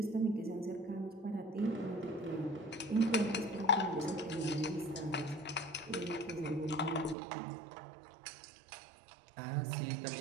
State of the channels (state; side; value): drops out; left; at 7.2 s